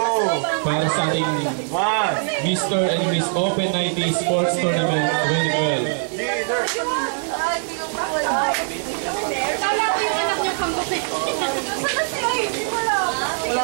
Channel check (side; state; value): left; silent; 64 dB below the other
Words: para sa ating Mr. and Miss Open 90 Sports Tournament 2012. Kala ko yung anak niyo kang buti. Sana sila hindi wala.